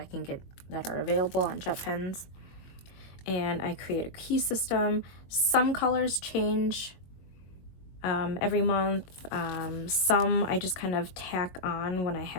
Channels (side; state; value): right; late; 22 ms